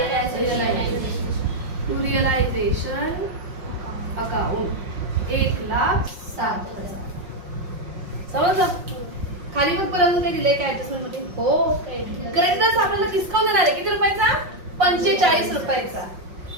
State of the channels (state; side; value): late; left; 5.5 ms